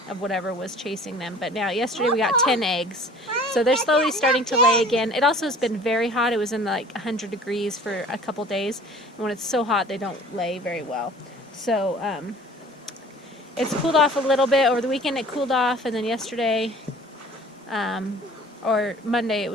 of whatever was chasing them. But now, yesterday we got 10 eggs. So they're slowly starting to lay again. It also has been very hot. It was in like 100 degrees for a couple days. And when it's so hot, they don't lay very well. So it's cooled off a little bit. Over the weekend it cooled off, and then yesterday or Monday it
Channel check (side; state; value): both; normal; correlation 0.48